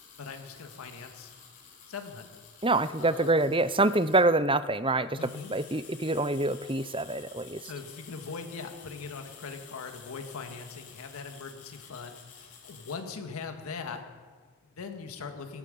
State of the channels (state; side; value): normal; both; correlation 0.27